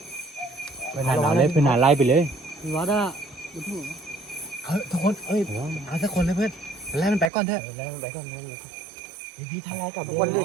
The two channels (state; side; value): drops out; left; at 7.3 s